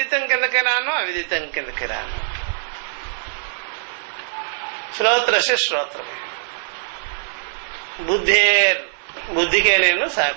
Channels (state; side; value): silent; left; 56 dB below the other